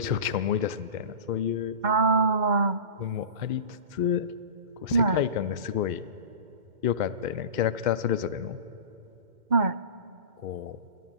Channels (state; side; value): late; left; 2.1 ms